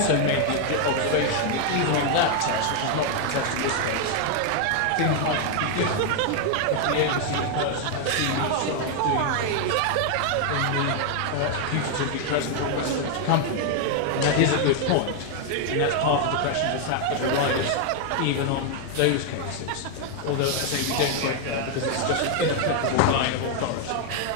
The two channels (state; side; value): different; both; correlation 0.00